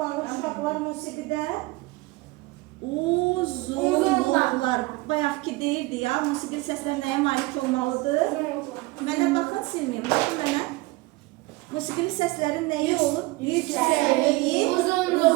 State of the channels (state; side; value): quieter; left; 21.9 dB